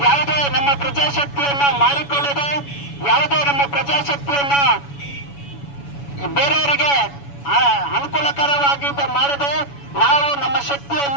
ಯಾವುದೇ ನಮ್ಮ ಪ್ರಜಾಶಕ್ತಿಯನ್ನ ಮಾರಿಕೊಳ್ಳದೆ, ಯಾವುದೇ ನಮ್ಮ ಪ್ರಜಾಶಕ್ತಿಯನ್ನ ಬೇರೆಯವರಿಗೆ ಅನುಕೂಲಕರವಾಗಿ ಮಾಡದೆ ನಾವು ನಮ್ಮ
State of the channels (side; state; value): right; late; 7.1 ms